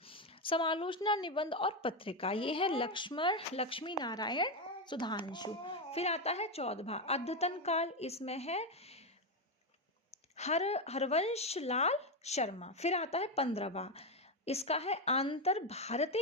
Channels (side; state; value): both; normal; correlation 0.09